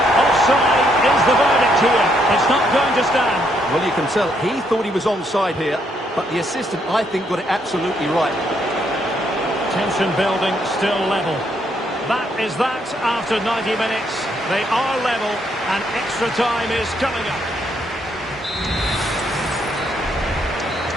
offside is the verdict here. It's not going to stand. Well, you can tell he thought he was onside here, but the assistant, I think, got it absolutely right. Tension building, still level. That is that after 90 minutes. They are level, and extra time is coming up.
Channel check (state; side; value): normal; both; correlation 0.73